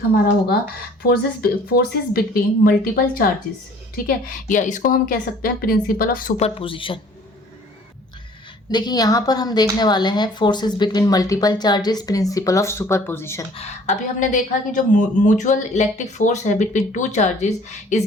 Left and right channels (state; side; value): normal; both; correlation 0.53